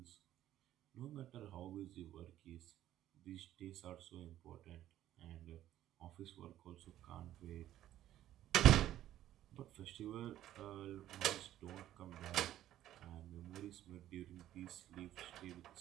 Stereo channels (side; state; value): left; quieter; 12.8 dB